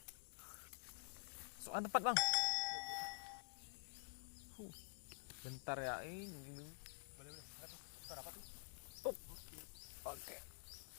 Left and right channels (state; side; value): silent; right; digital silence